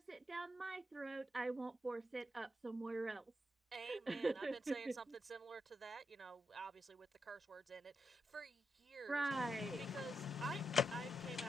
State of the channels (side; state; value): both; normal; correlation 0.84